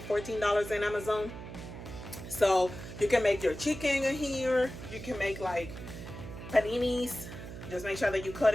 $14 in Amazon. So you can make your chicken in here. You can make like paninis. Just make sure that you cut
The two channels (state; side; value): noise; right; hum, 11 dB below the sound